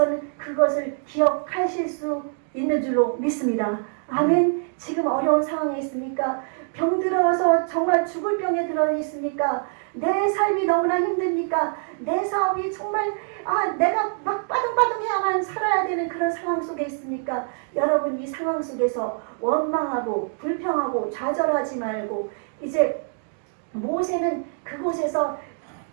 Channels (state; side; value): silent; left; 62 dB below the other